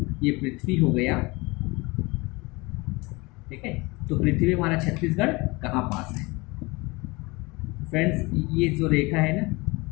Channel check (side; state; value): right; quieter; 24.4 dB